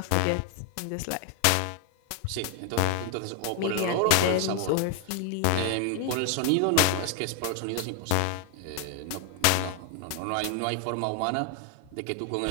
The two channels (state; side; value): different; both; correlation 0.00